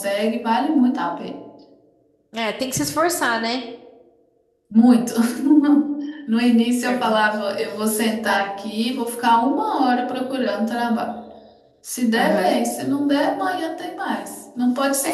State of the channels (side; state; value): both; identical; correlation 1.00